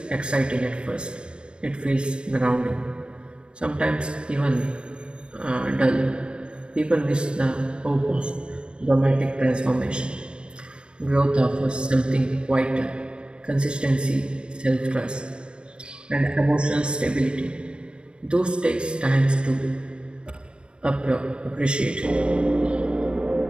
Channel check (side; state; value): left; late; 0.052 ms